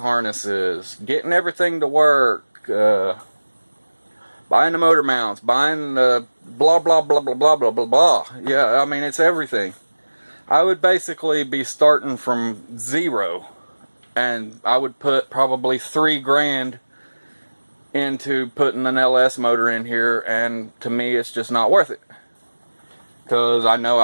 getting everything to work, buying the motor mounts, buying the blah blah blah blah blah blah blah blah. Yeah, I mean, it's everything. I would basically be starting from zero, and I would put probably $3,000 into putting an LS motor in here, and to me it's just not worth it, because I know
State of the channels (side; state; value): both; inverted; correlation -1.00